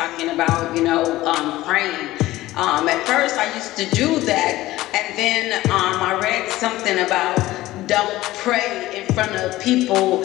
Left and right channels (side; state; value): right; quieter; 16.8 dB